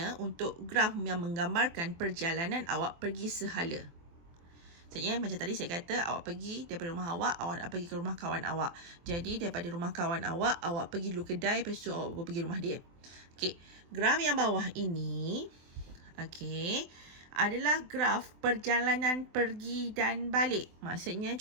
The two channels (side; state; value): left; late; 24 ms